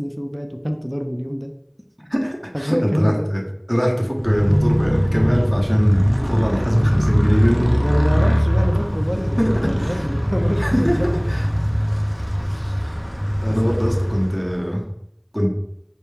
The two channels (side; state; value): both; identical; correlation 1.00